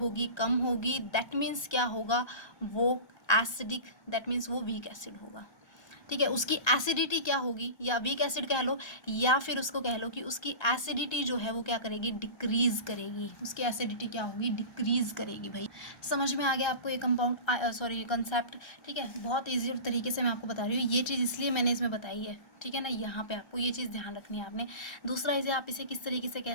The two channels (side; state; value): right; late; 1.2 ms